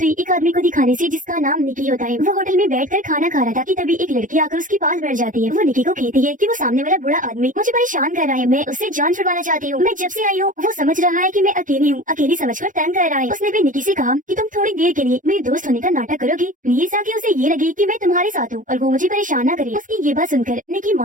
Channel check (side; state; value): left; late; 0.38 ms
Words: हुई एक आदमी को दिखाने से जिसका नाम निकी होता है। वो होटल में बैठकर खाना खा रहा था कि तभी एक लड़की आकर उसके पास बैठ जाती है। वो निकी को कहती है कि वो सामने वाला बुरा आदमी मुझे परेशान कर रहा है, मैं उससे जान छुड़वाना चाहती हूँ। मैं जब से आई हूँ वो समझ रहा है कि मैं अकेली हूँ, अकेली समझकर तंग कर रहा है। उसने भी निकी से कहा कि तुम थोड़ी देर के लिए मेरे दोस्त होने का नाटक करोगी प्लीज, ताकि उसे ये लगे कि मैं तुम्हारे साथ हूँ और वो मुझे परेशान न करे। उसकी ये बात सुनकर निकी